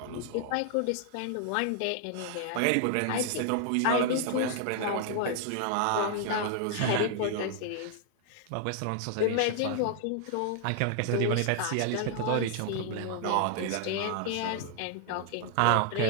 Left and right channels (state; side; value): different; both; correlation 0.00